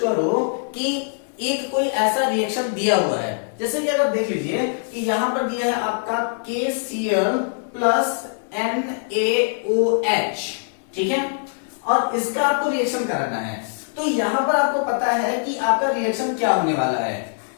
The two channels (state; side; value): silent; right; digital silence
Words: करो कि एक कोई ऐसा रिएक्शन दिया हुआ है, जैसे कि अगर देख लीजिए कि यहां पर दिया है आपका KCl प्लस NaOH, ठीक है, और इसका आपको रिएक्शन कराना है, तो यहां पर आपको पता है कि आपका रिएक्शन क्या होने वाला है।